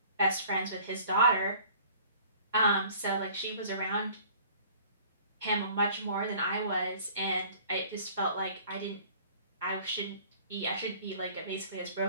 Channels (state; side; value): inverted; both; correlation -0.51